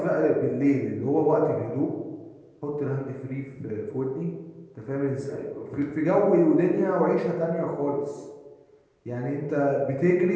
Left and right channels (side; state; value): both; identical; correlation 1.00